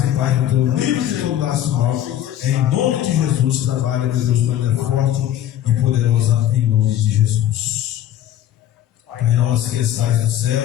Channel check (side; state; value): right; quieter; 11.7 dB